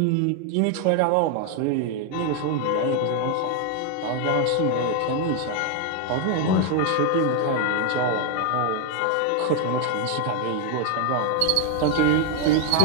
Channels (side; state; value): both; different; correlation 0.01